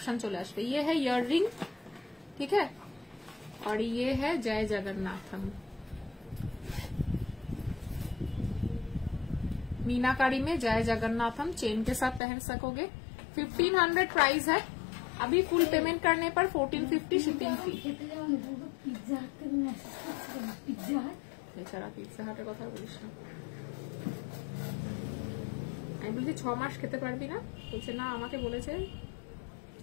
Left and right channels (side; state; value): right; drops out; at 12.2 s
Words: চলে আসবে। ये है ইয়াররিং, ठीक है, और ये है जय जगन्नाथम, मीनाकारी में जय जगन्नाथम चेन के साथ पहन सकोगे। 1500 प्राइस है, अभी फुल पेमेंट करने पर 1450 शिपिंग फी। এছাড়া পিৎজা হাটের কথা বলিস না, আমি বলছি 6 মাস খেতে পারবি না, বলছে না আমাকে বলেছে